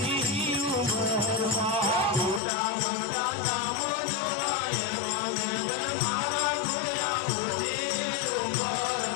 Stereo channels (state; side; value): drops out; right; at 2.4 s